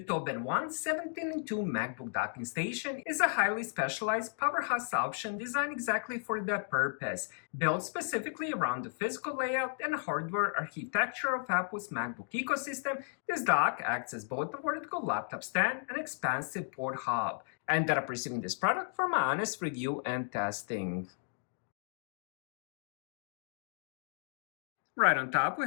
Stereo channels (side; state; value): right; silent; digital silence